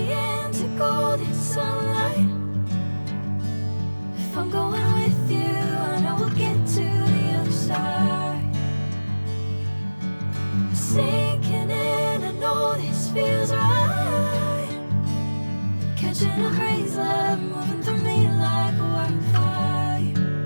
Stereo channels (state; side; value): inverted; both; correlation -1.00